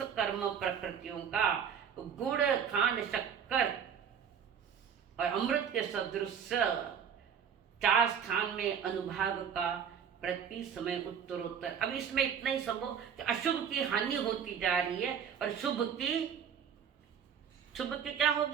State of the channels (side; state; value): left; quieter; 7.8 dB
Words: कर्म प्रकृतियों का गुड़ खांड शक्कर और अमृत के सदृश 4 स्थान में अनुभाग का प्रति समय उत्तरोत्तर। अब इसमें इतना ही समझो कि अशुभ की हानि होती जा रही है और शुभ की क्या